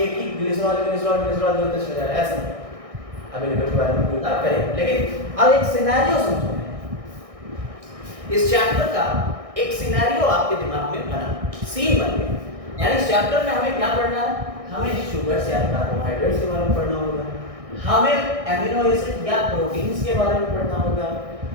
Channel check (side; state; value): left; late; 1.6 ms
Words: ही ग्लिसरॉल ग्लिसरॉल ग्लिसरॉल जोड़ते चले जा रहे हैं, ऐसा नहीं। अभी लिपिड के बारे में बात करें, लेकिन अब एक सिनेरियो समझो। इस चैप्टर का एक सिनेरियो आपके दिमाग में बना, सीन बन गया। यानी इस चैप्टर में हमें क्या पढ़ना है? हमें शुगर्स या कार्बोहाइड्रेट्स के बारे में पढ़ना होगा, हमें एमिनो एसिड या प्रोटीन्स के बारे में पढ़ना होगा,